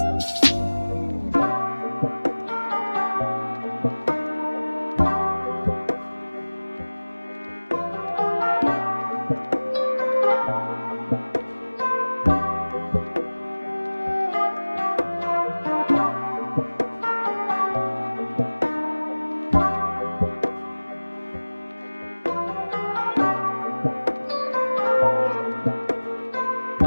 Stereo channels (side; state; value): both; inverted; correlation -1.00